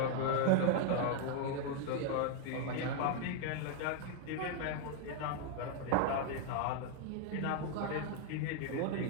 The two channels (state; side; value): different; both; correlation 0.00